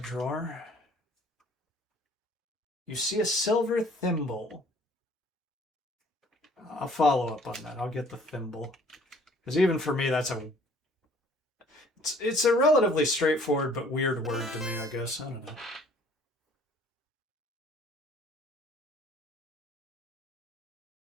drawer? You see a silver thimble. I'll follow up on that. I'll get the thimble. Because even for me, it's a relatively straightforward but weird word to me, I guess. I don't know.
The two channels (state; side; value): normal; both; correlation 0.56